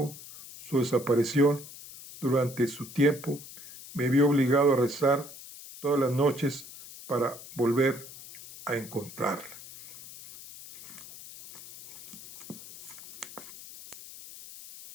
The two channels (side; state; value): left; noise; hiss, 16 dB below the sound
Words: su desaparición, durante su tiempo me vio obligado a rezar todas las noches para volver a encontrarla.